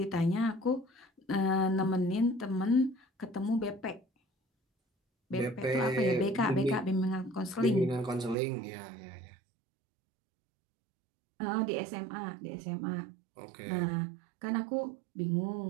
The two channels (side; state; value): left; drops out; at 8.3 s